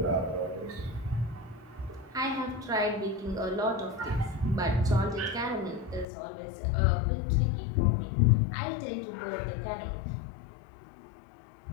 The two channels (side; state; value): right; drops out; at 6.1 s